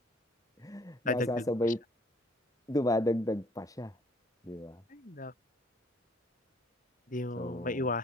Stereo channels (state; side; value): normal; both; correlation 0.60